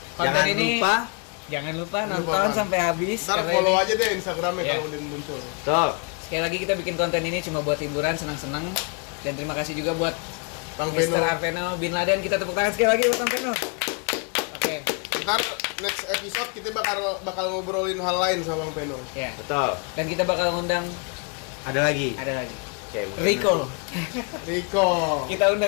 konten Jangan ini. lupa Jangan lupa Jangan lupa, nonton Bang. sampai habis. Ntar karena follow ini- aja deh Instagramnya Ya. kalau udah muncul. Tuh. Sekali lagi kita bikin konten ini cuma buat hiburan, senang-senang. Dan terima kasih juga buat Bang Mr. Beno. Arveno Bin Laden. Kita tepuk tangan sekali lagi buat Bang Beno. Oke, Ntar next episode kita bakal ngobrolin hal lain sama Bang Beno. ya. Betul. Dan kita bakal ngundang Ada lagi. Oke, mungkin Rico. Rico. Kita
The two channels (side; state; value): right; quieter; 36.3 dB